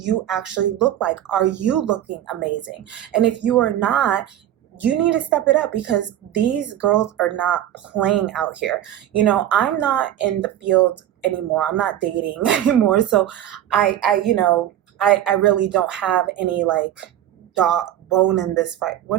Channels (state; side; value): quieter; left; 11.9 dB